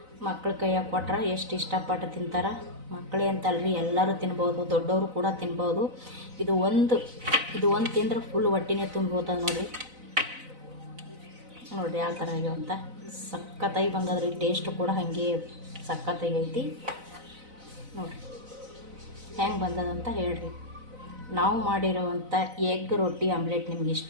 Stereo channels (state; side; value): late; left; 4.0 ms